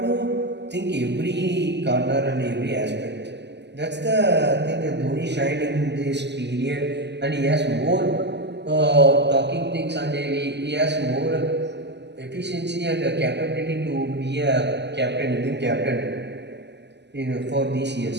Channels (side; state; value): left; late; 0.50 ms